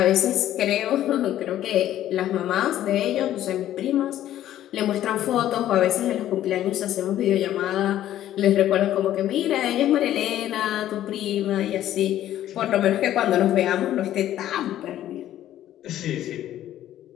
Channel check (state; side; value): quieter; right; 12.5 dB